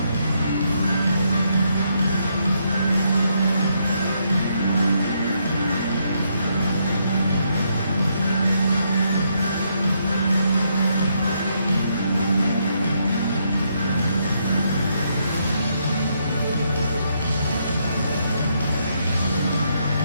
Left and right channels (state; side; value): inverted; both; correlation -0.76